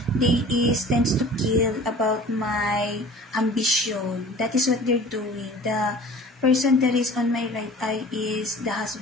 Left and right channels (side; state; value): both; normal; correlation 0.44